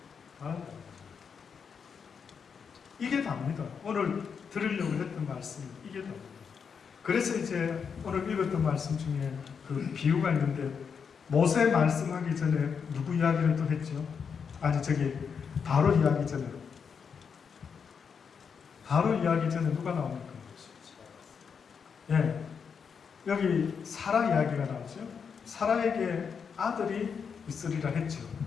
바란다. 이게 답니다. 오늘 들으려고 했던 말씀이 이게 답니다. 그래서 이제 오늘 읽었던 말씀 중에 그 비유가 있는데 모세 말씀하기 전에 누구 이야기를 또 했죠? 아니 저기 바로 이야기 전에 누가 나옵니까? 예, 여기 사라 이야기가 나오죠. 사라에게 아들이 있으리라 했죠.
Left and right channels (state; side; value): quieter; right; 6.4 dB